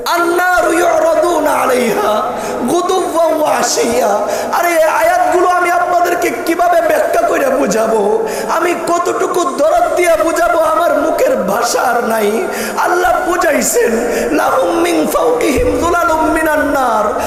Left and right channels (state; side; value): identical; both; correlation 1.00